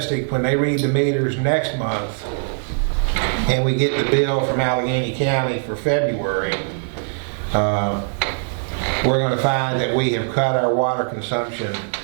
when they read the meters next month and we get the bill from Allegheny County for February. We're going to find that we have cut our water consumption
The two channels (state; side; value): silent; left; 65 dB below the other